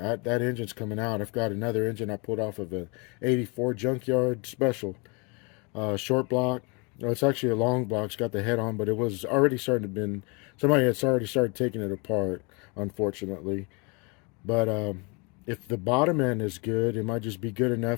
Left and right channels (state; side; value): quieter; right; 31.0 dB